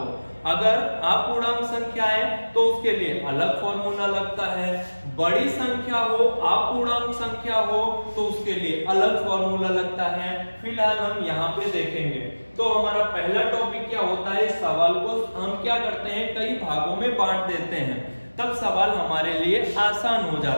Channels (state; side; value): inverted; both; correlation -1.00